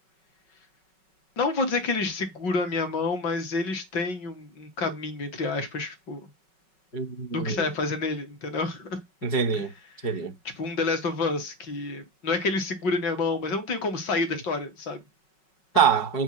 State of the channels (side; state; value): right; late; 5.4 ms